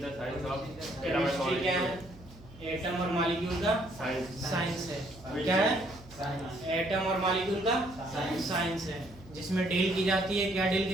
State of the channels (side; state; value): right; noise; hum, 20 dB below the sound